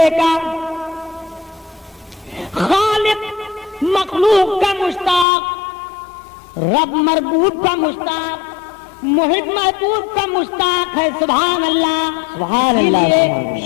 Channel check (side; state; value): right; drops out; at 5.2 s